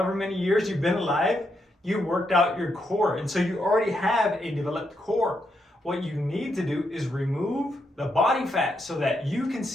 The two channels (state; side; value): normal; both; correlation 0.80